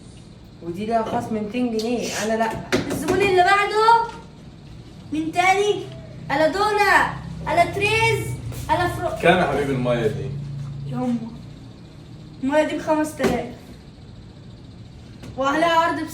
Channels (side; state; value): both; identical; correlation 1.00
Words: ودي لها خصم 200 جنيه. انا لا. الزبون اللي بعده مين تاني؟ الا دونا، الا تريز، الا فرو. كام يا حبيبي المية دي؟ يما المية دي ب5000 وعليها عرض